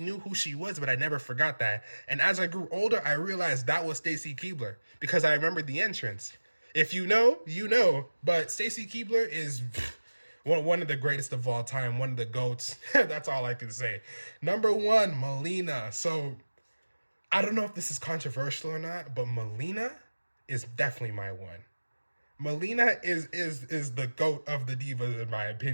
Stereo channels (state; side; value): inverted; both; correlation -1.00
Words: who she was, but I never forgot that. And as I grew older, I realized that was Stacy Keibler because I remembered the entrance. If you know, you know. But Stacy Keibler is one of the greatest of all time, one of the GOATs. That's all I can say. Number one, Melina. So I don't know if this is controversial or not, but Melina is definitely my one. Melina is the GOAT of the Divas, in my